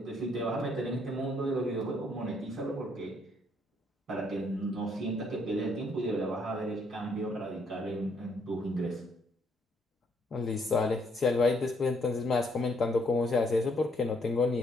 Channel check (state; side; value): normal; both; correlation 0.70